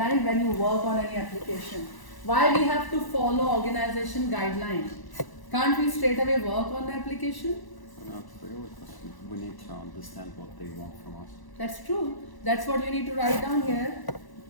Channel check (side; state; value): right; late; 1.0 ms